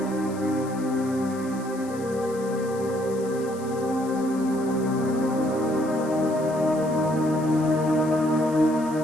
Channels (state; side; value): noise; left; hiss, 20 dB below the sound